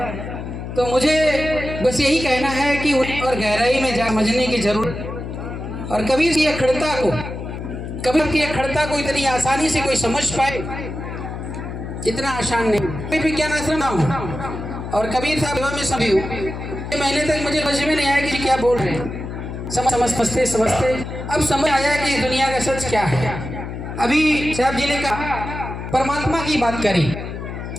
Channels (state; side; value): noise; left; hum, 7 dB below the sound